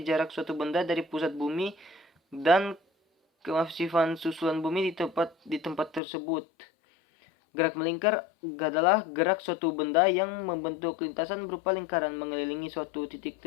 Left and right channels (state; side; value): drops out; right; at 6.0 s